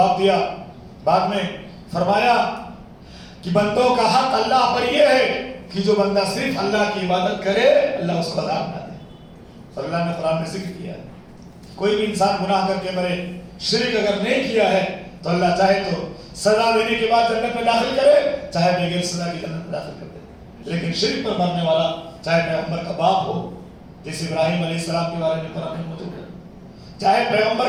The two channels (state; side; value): identical; both; correlation 1.00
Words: دیا، بعد میں فرمایا کہ بندوں کا حق اللہ پر یہ ہے کہ جو بندہ صرف اللہ کی عبادت کرے اللہ اس کو عذاب نہ دے۔ اور اللہ نے قرآن میں ذکر کیا ہے کوئی بھی انسان گناہ کر کے مرے، شرک اگر نہیں کیا ہے تو اللہ چاہے تو سزا دینے کے بعد جنت میں داخل کرے، چاہے بغیر سزا کی جنت میں داخل کر دے۔ لیکن شرک پر مرنے والا چاہے پیغمبر کا باپ ہو جیسے ابراہیم علیہ السلام کے بارے میں قرآن میں موجود ہے، چاہے پیغمبر